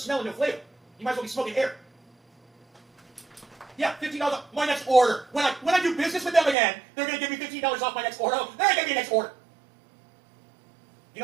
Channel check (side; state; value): left; drops out; at 6.6 s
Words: and no flavor. You might as well be smoking air. Yeah, $15 off my next order. When I do business with them again, they're going to give me $15 off my next order. Oh, they're going to give me a next order.